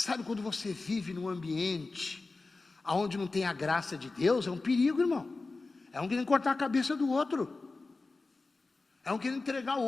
quando você vive num ambiente onde não tem a graça de Deus, é um perigo, irmão. É um querendo cortar a cabeça do outro. É um querendo entregar o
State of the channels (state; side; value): quieter; right; 3.6 dB